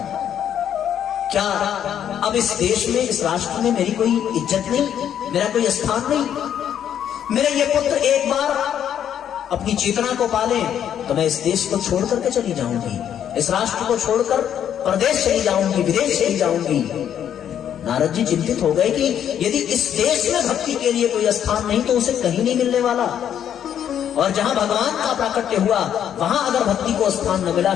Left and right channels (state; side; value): quieter; right; 9.5 dB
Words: क्या अब इस देश में, इस राष्ट्र में मेरी कोई इज्जत नहीं, मेरा कोई स्थान नहीं? मेरे ये पुत्र एक बार अपनी चेतना को पाले तो मैं इस देश को छोड़ करके चली जाऊंगी, इस राष्ट्र को छोड़कर प्रदेश चली जाऊंगी, विदेश चली जाऊंगी। नारद जी चिंतित हो गए कि यदि इस देश में भक्ति के लिए कोई स्थान नहीं तो उसे कहीं नहीं मिलने वाला, और जहां भगवान का प्राकट्य हुआ वहां अगर भक्ति को स्थान न मिला,